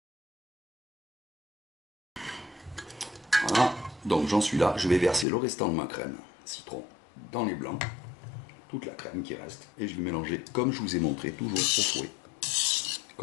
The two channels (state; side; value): drops out; right; at 5.2 s